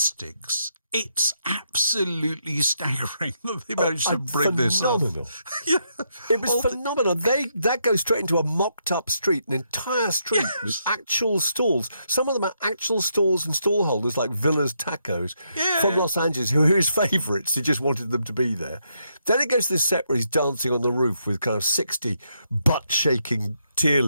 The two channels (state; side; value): inverted; both; correlation -0.78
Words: it's absolutely staggering that they managed to bring this up. It was phenomenal. That goes straight into a mocked-up street, an entire street with actual stalls. Some of them are actual stalls and stall holders, like Villa's Tacos from Los Angeles, who are his favourites. He just wanted them to be there. Then it goes to this set where he's dancing on the roof with kind of 60 butt-shaking